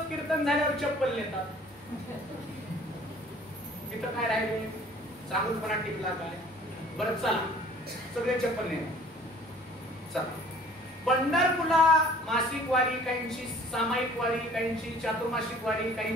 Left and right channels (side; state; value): both; normal; correlation 0.52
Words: कीर्तन झाल्यावर चप्पल नेतात. तिथं काय राहिले? चांगुलपणा टिकला काय? बरं चला, सगळे चप्पल नेतात. चला, पंढरपूरला मासिक वारी, काहींची सामायिक वारी, काहींची चातुर्मासिक वारी,